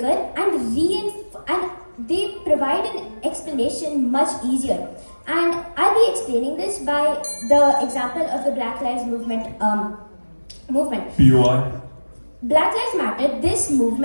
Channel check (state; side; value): inverted; both; correlation -1.00